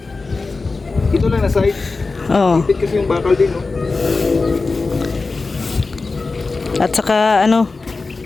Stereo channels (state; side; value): quieter; right; 3.9 dB